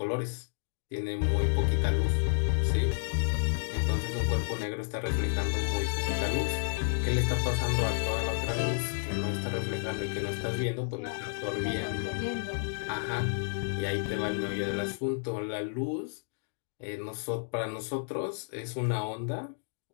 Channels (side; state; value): right; silent; digital silence